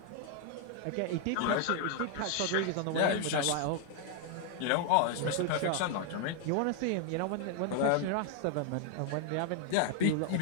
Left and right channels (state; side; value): different; both; correlation 0.00